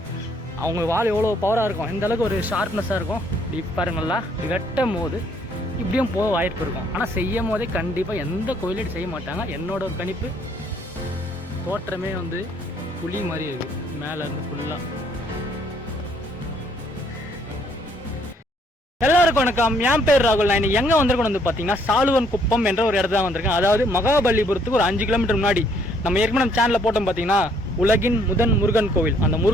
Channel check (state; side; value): normal; both; correlation 0.66